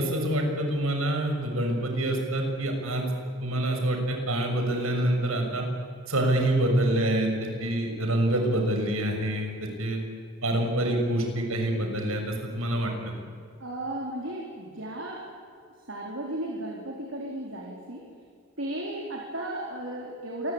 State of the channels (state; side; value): normal; both; correlation 0.51